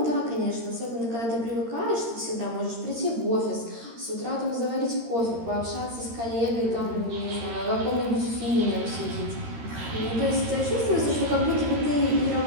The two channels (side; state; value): left; late; 13 ms